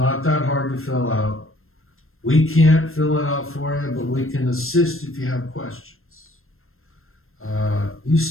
that hard to fill out. We can't fill it out for you, but we can assist if you have questions.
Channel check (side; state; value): right; late; 0.61 ms